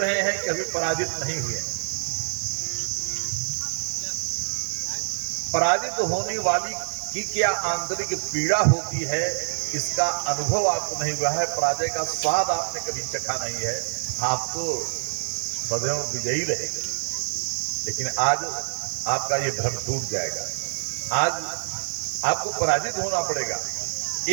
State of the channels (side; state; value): left; silent; digital silence